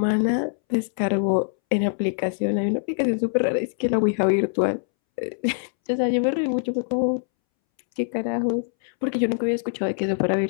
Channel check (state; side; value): silent; right; 63 dB below the other